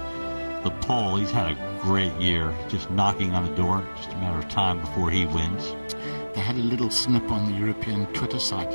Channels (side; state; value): both; inverted; correlation -1.00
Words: The Pole, he's had a great year, just knocking on the door. Just a matter of time before he wins. They had a little snip on the European Twitter site